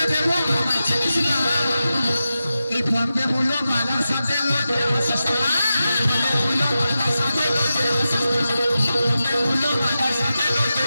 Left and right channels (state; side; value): inverted; both; correlation -0.92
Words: দেবো আমার চিনিস না। এই বম্বে মুলোবালার সাথে লড়তে আসিস না, মুলোবালার সাথে লড়তে আসিস না, বম্বে মুলোবালার সাথে লড়তে